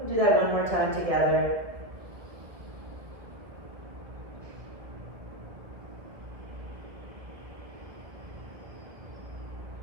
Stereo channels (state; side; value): late; left; 1.9 ms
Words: do that one more time together.